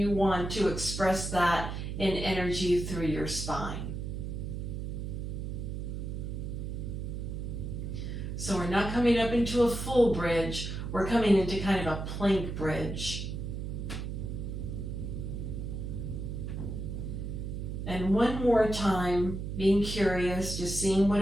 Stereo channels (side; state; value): right; noise; hum, 5 dB below the sound